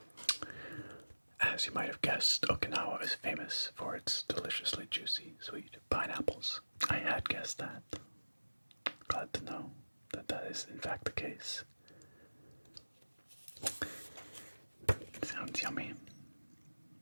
As you might have guessed, Okinawa is famous for its deliciously juicy, sweet pineapples. I had guessed that. Glad to know that that is in fact the case. Sounds yummy.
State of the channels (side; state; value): both; inverted; correlation -1.00